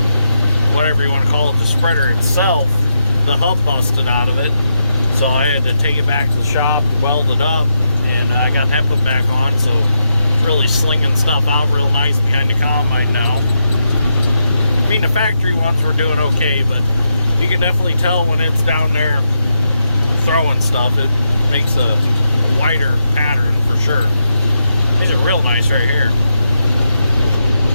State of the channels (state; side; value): inverted; both; correlation -0.83